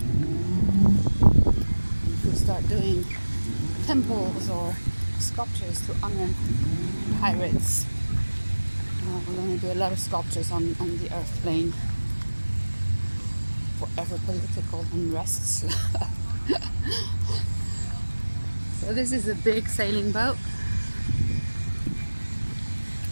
We'll start doing temples or sculptures to honor pirates. We're going to do a lot of sculptures on the earth plane forever political unrests. So this is a big sailing boat.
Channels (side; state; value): both; inverted; correlation -1.00